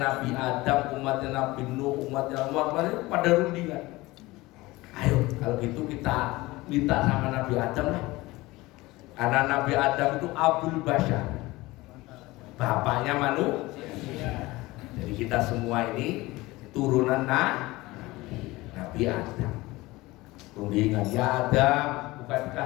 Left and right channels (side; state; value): right; quieter; 20.3 dB